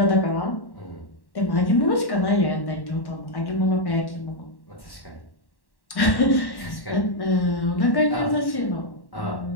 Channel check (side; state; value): right; late; 1.1 ms